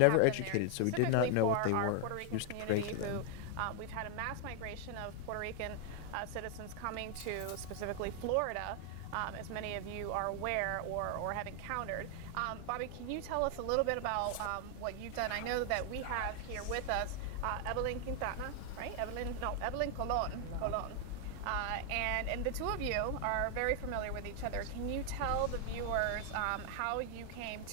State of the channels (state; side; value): different; both; correlation 0.00